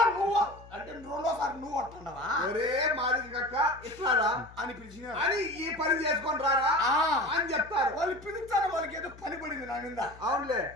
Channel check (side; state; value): left; noise; hum, 20 dB below the sound